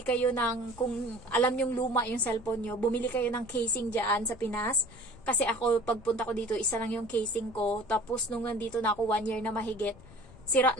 kayo ng, kung alam yung luma yung cellphone nyo, bumili kayo ng casing dyan sa Pinas. Kasi ako, pagpunta ko dito, isa lang yung casing ko. Tapos, nung nandito na ako 1 year na mahigit, sira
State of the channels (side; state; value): left; noise; rumble, 20 dB below the sound